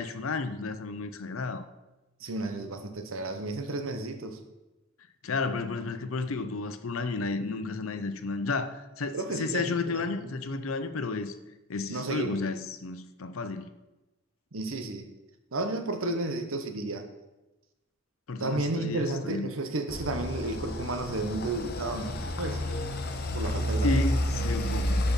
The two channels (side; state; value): both; normal; correlation 0.42